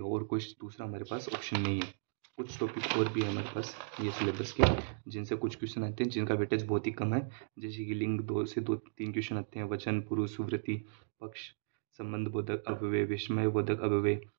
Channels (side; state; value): left; silent; digital silence